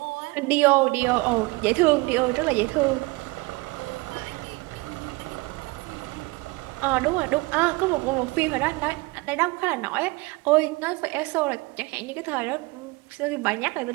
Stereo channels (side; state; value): left; quieter; 24.1 dB